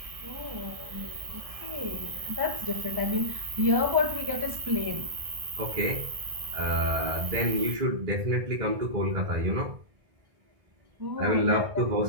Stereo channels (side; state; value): left; late; 1.6 ms